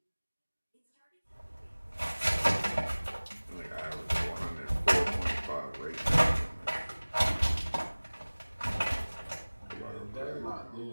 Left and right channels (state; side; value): inverted; both; correlation -1.00